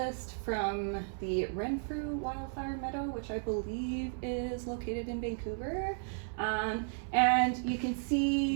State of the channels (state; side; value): silent; left; 55 dB below the other